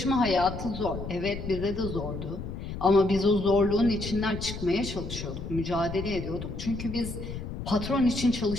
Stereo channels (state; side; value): noise; left; rumble, 7 dB below the sound